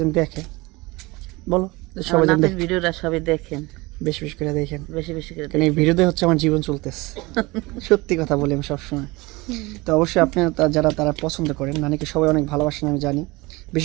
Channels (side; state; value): left; quieter; 23.1 dB